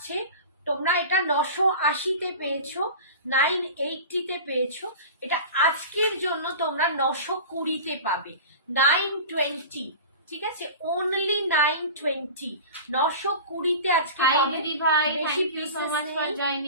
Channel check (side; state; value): both; inverted; correlation -0.34